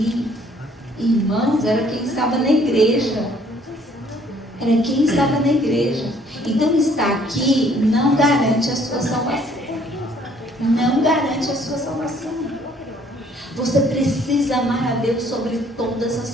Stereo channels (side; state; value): both; normal; correlation 0.61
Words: Irmãos, era quem estava na igreja. Era quem estava na igreja. Então, estar aqui não garante a sua salvação. Não garante a sua salvação. Você precisa amar a Deus sobre todas